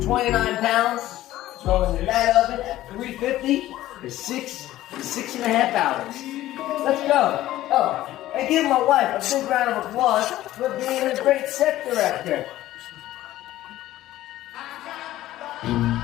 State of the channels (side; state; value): right; quieter; 14.8 dB